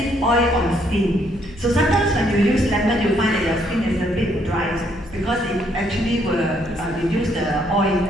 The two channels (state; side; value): noise; left; hum, 19 dB below the sound